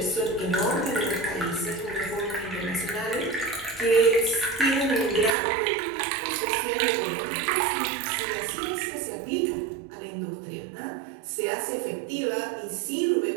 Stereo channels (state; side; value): drops out; left; at 5.4 s